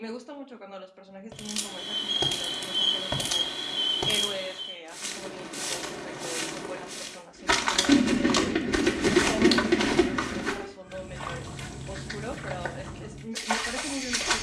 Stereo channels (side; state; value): both; identical; correlation 1.00